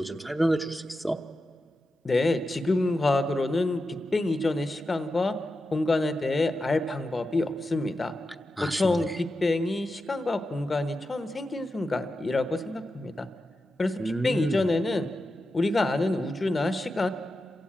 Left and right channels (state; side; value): normal; both; correlation 0.90